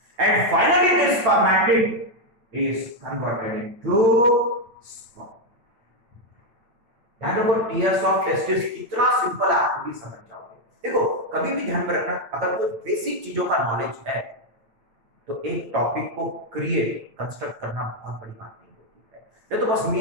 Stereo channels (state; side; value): late; left; 8.9 ms